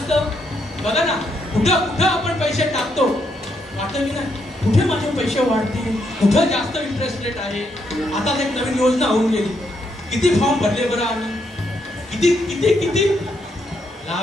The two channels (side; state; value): both; normal; correlation 0.77